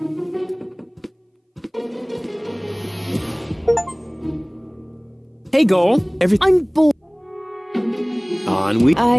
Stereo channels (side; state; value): both; identical; correlation 1.00